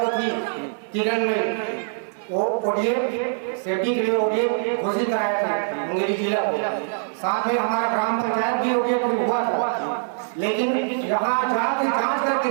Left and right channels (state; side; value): silent; left; digital silence